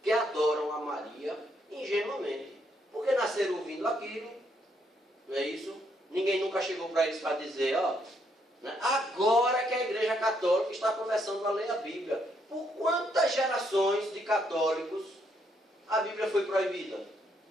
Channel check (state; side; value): normal; both; correlation 0.73